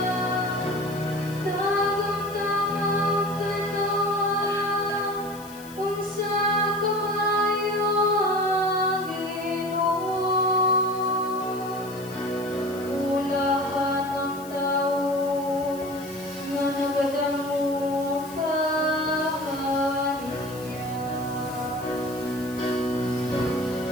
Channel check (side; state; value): left; noise; hiss, 19 dB below the sound